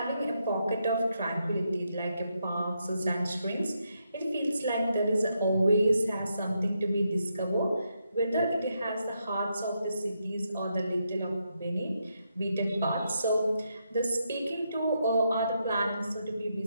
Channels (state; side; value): inverted; both; correlation -0.81